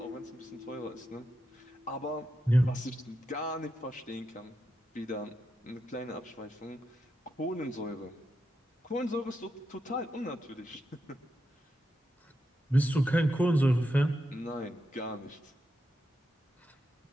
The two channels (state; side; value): normal; both; correlation 0.86